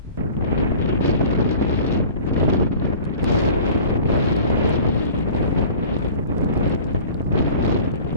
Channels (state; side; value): inverted; both; correlation -0.44